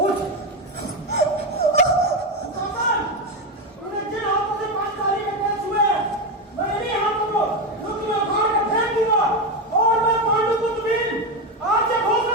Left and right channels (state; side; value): normal; both; correlation 0.12